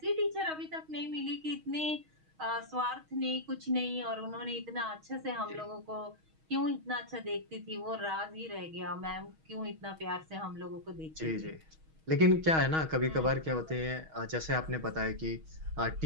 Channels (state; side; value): late; left; 6.3 ms